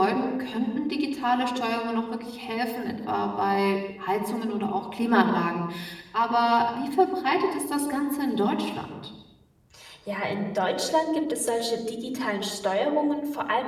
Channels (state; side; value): identical; both; correlation 1.00